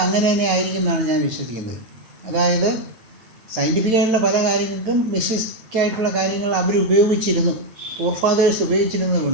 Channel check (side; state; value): left; late; 8.9 ms